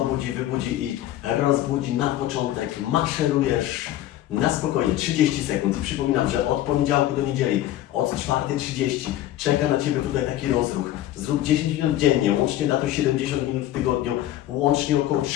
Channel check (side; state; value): right; quieter; 13.5 dB